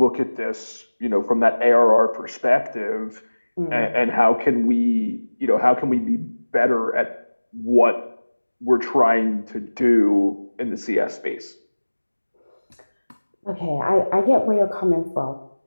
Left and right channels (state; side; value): inverted; both; correlation -1.00